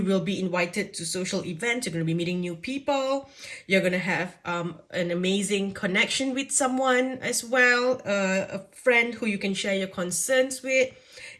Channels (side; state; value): both; identical; correlation 1.00